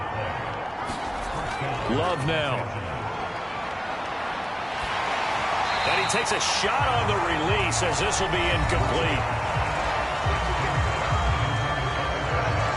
Love now. And he takes a shot on the release as this will be incomplete.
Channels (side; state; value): both; identical; correlation 1.00